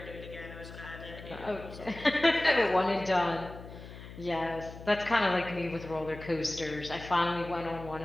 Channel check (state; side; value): noise; left; hum, 14 dB below the sound